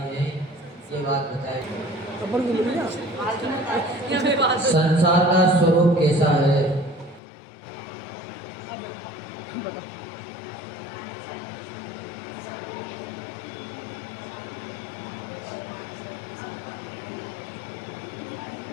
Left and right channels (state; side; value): drops out; right; at 7.2 s